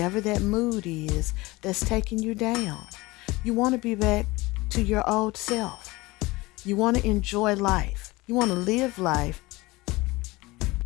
that mood is that's taking you down. You want to be back to your old self. You want to enjoy life. You want to live life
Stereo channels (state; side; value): quieter; right; 21.6 dB